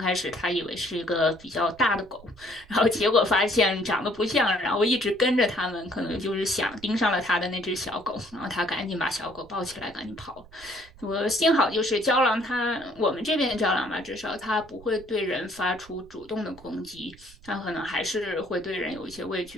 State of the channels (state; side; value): noise; right; rumble, 23 dB below the sound